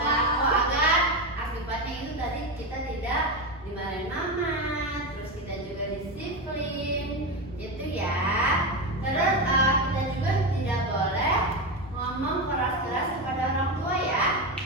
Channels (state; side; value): normal; both; correlation 0.15